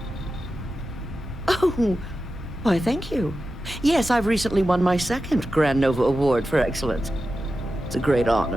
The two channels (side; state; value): both; normal; correlation 0.92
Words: Oh, why, thank you. Yes, I've recently won my second Grand Nova Award for excellence. It's a great